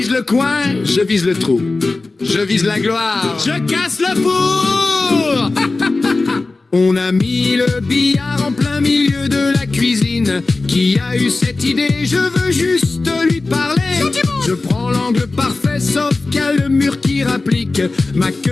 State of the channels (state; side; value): quieter; right; 3.4 dB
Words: le coin, je vise le trou. Je vise la gloire, je casse le four. On a mis le billard en plein milieu de la cuisine. Qui a eu cette idée? Je veux juste lui parler. Je prends l'angle parfait, sauf qu'il y a le mur qui rapplique. Ma